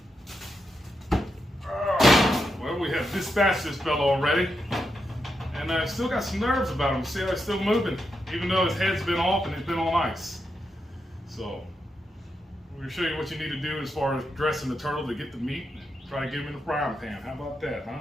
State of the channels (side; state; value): both; normal; correlation 0.85